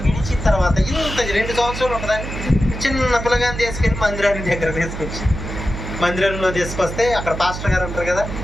విడిచిన తర్వాత ఇంత 2 సంవత్సరాలు ఉంటుందని చిన్న పిల్లగాని తీసుకెళ్ళి మందిరానికి దగ్గర తీసుకొచ్చి మందిరంలో తీసుకొస్తే అక్కడ పాస్టర్ గారు ఉంటారు కదా,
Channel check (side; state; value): right; noise; hum, 7 dB below the sound